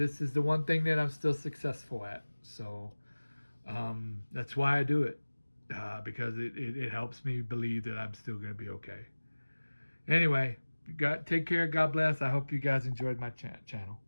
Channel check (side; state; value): both; inverted; correlation -1.00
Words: is the one thing that I'm still successful at. So that's why I do it, because it helps me believe that I'm still going to be okay. Anyway, take care. God bless. I hope you guys enjoyed my channel.